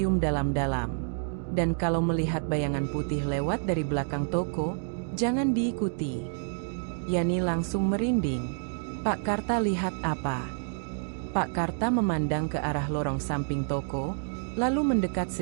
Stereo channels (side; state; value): left; silent; digital silence